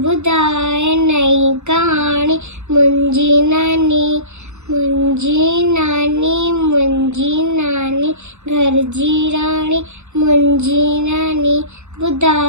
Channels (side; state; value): left; late; 0.82 ms